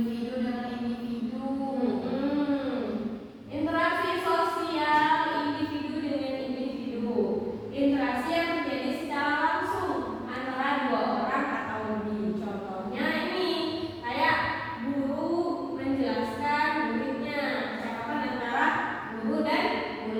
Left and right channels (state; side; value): identical; both; correlation 1.00